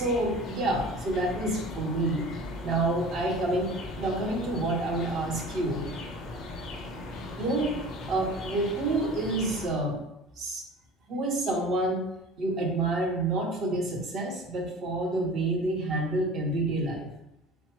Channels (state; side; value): normal; both; correlation 0.40